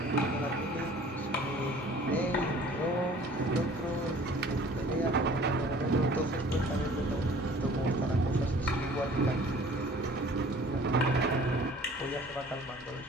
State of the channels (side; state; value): both; normal; correlation 0.50